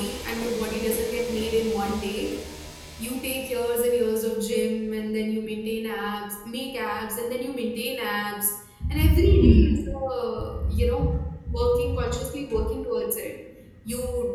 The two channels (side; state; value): both; identical; correlation 1.00